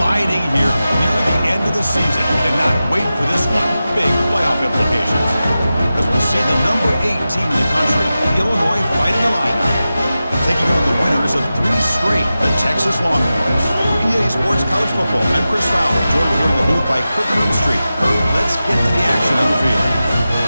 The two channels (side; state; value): both; inverted; correlation -0.93